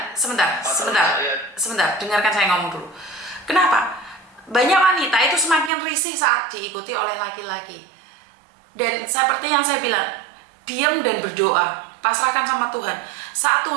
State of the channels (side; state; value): left; drops out; at 5.7 s